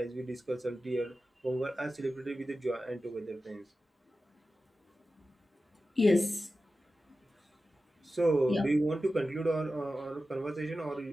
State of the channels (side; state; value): both; normal; correlation 0.93